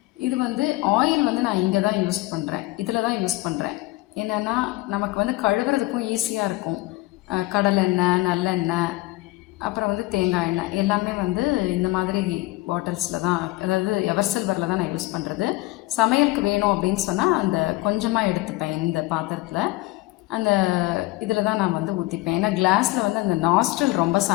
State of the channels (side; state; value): right; quieter; 20.1 dB